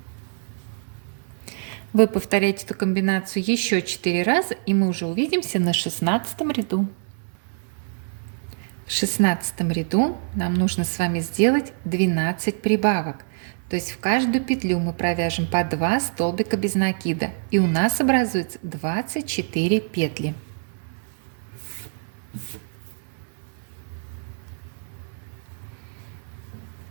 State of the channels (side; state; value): left; silent; 62 dB below the other